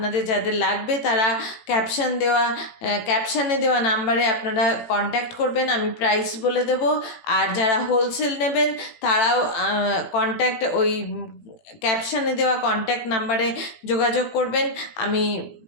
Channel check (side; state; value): right; late; 18 ms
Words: যাদের লাগবে তারা ক্যাপশানে দেওয়া নাম্বারে আপনারা কন্ট্যাক্ট করবেন, আমি প্রাইস বলে দেব। আর যারা হোলসেল নেবেন তারাও ওই ক্যাপশানে দেওয়া কন্ট্যাক্ট নাম্বারে যোগাযোগ করবেন, আমি